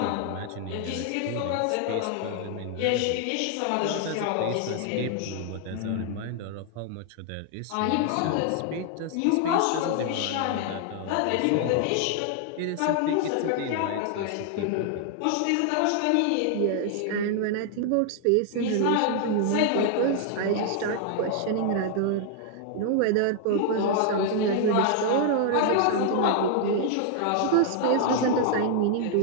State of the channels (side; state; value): both; different; correlation 0.00